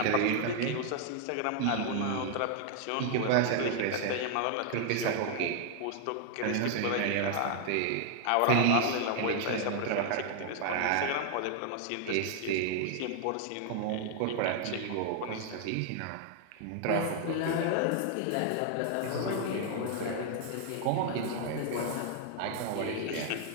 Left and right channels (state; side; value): different; both; correlation 0.00